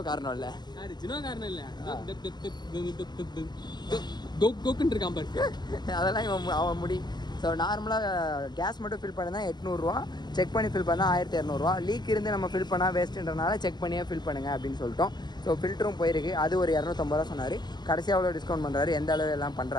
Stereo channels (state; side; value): late; right; 0.21 ms